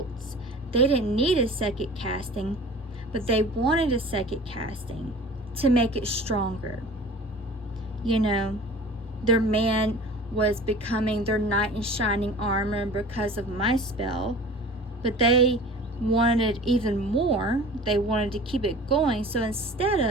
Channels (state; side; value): normal; both; correlation 0.41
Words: They didn't need a second casting, but they wanted a second casting to make it stronger. Their man was becoming their knight in shining armor because of my spell, but they wanted even more. They wanted to keep it going. So instead